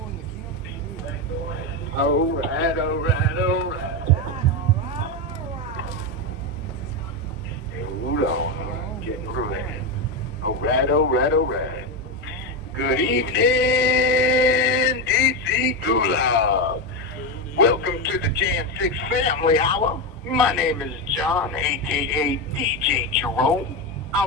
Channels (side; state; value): both; normal; correlation 0.12